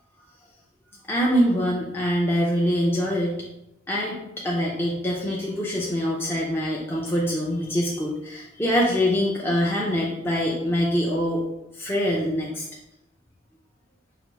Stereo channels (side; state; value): both; normal; correlation 0.71